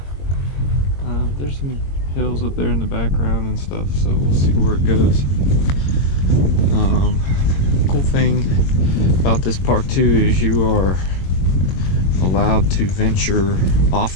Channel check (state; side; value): late; right; 22 ms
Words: There's some hills up there in the background and stuff, so we'll see where it goes. Cool thing about this park too is you are allowed to venture